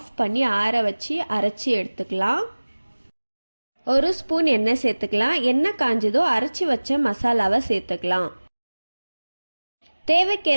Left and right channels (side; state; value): both; inverted; correlation -1.00